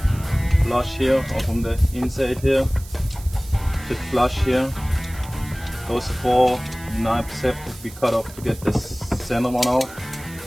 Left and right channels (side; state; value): right; noise; hiss, 18 dB below the sound